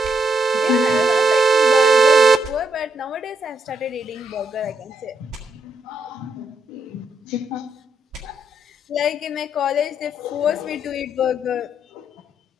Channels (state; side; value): normal; both; correlation 0.77